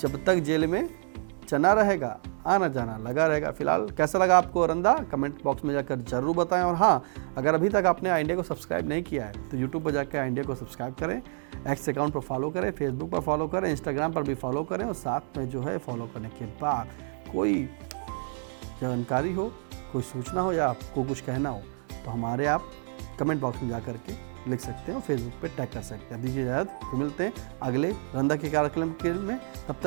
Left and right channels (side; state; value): left; silent; 59 dB below the other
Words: जब तक जेल में चना रहेगा आना जाना लगा रहेगा। फिलहाल कैसा लगा आपको रंधा, कमेंट बॉक्स में जाकर जरूर बताएं। और हाँ, अगर अभी तक आपने इंडिया को सब्सक्राइब नहीं किया है तो यूट्यूब पर जाकर इंडिया को सब्सक्राइब करें, एक्स अकाउंट पर फॉलो करें, फेसबुक पर फॉलो करें, इंस्टाग्राम पर भी फॉलो करें। और साथ में जो है फॉलो करने के बाद कोई जानकारी हो, कोई सूचना हो या आपको कुछ कहना हो तो हमारे आप कमेंट बॉक्स में जा करके लिख सकते हैं और फेसबुक पे टैग कर सकते हैं। दीजिए इजाज़त, तो मिलते हैं अगले रंधा के कार्यक्रम में। तब